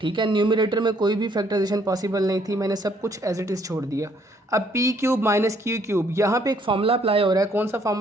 ठीक है। न्यूमरेटर में कोई भी फैक्टराइजेशन पॉसिबल नहीं थी, मैंने सब कुछ एज इट इज़ छोड़ दिया। अब P cube minus q cube, यहाँ पे एक फार्मूला अप्लाई हो रहा है, कौन सा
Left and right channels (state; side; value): normal; both; correlation 0.66